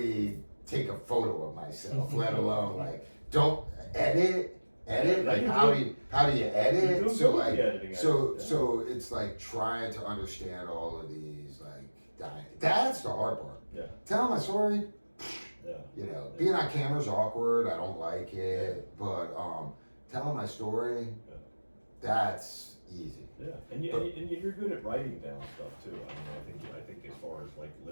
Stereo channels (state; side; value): inverted; both; correlation -1.00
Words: take a photo of myself, let alone like, don't edit. Like, how do you edit? So like, so it's like trying to understand all of these like, that's the hard part. Yeah. Tell my story. Yeah. Being on camera is awkward. I don't like it, but telling my story, that's easy. Yeah, and you're good at writing down stuff too. I mean, I think as far as like